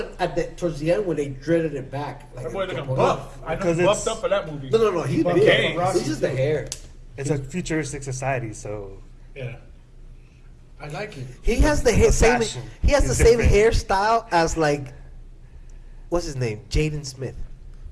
towards the end when they dreaded it back. Like That boy looking no, buff. I know Because he it's- buffed up for that movie. no, he's buffed big. up for Rocky It's just the too. hair. It's a futuristic society, so Yeah. I like it. He has the same. fashion He has the is same different. hairstyle as like, what's his name? Jaden Smith.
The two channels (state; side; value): identical; both; correlation 1.00